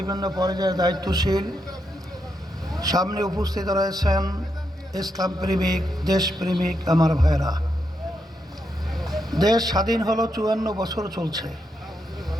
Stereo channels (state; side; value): normal; both; correlation 0.82